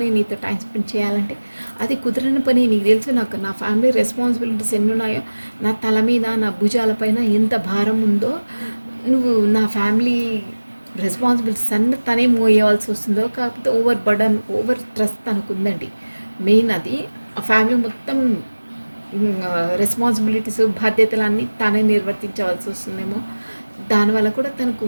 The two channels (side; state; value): both; inverted; correlation -1.00